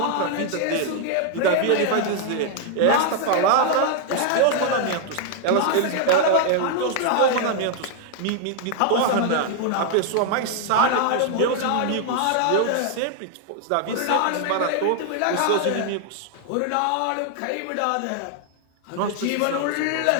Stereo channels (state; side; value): different; both; correlation 0.00